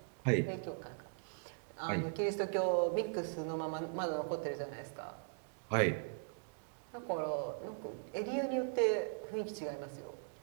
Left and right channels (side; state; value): left; silent; digital silence